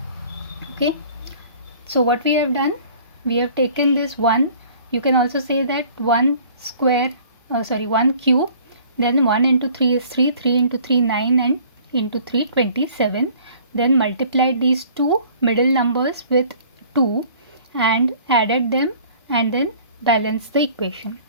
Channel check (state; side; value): inverted; both; correlation -0.52